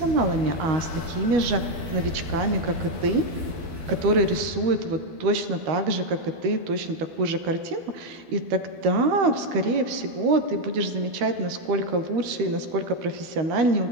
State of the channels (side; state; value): left; late; 13 ms